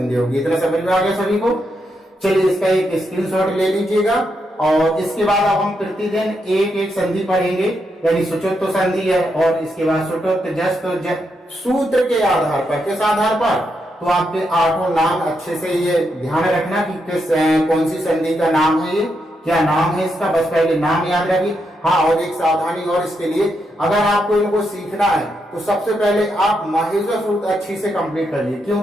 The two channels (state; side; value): normal; both; correlation 0.82